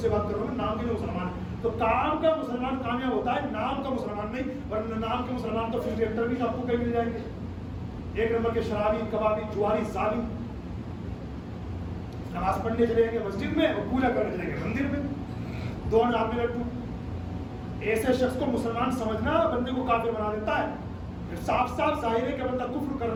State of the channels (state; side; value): identical; both; correlation 1.00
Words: بات کر رہا ہوں, نام کے مسلمان. تو کام کا مسلمان کامیاب ہوتا ہے, نام کا مسلمان نہیں. ورنہ نام کے مسلمان تو فلم ایکٹر بھی آپ کو کہیں مل جائیں گے, 1 نمبر کے شرابی, کبابی, جواری, ظالم. نماز پڑھنے چلے گے مسجد میں اور پوجا کرنے چلے گے مندر میں, 2 ہاتھ میں لڈو. ایسے شخص کو مسلمان سمجھنا بندے کو کافر بنا دیتا ہے. صاف صاف ظاہر ہے کہ بندہ کفر کر